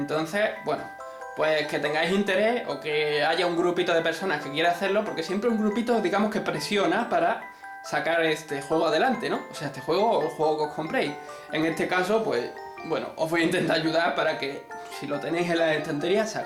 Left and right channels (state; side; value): identical; both; correlation 1.00